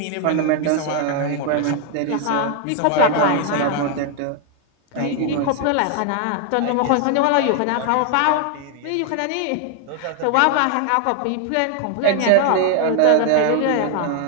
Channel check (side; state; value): both; different; correlation 0.00